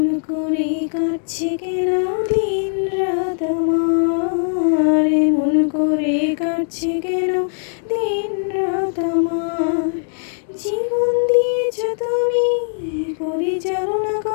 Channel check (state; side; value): silent; right; digital silence